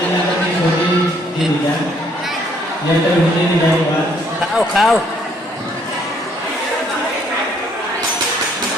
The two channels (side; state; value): both; normal; correlation 0.66